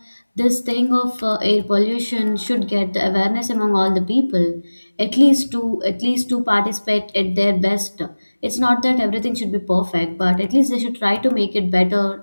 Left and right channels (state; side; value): inverted; both; correlation -1.00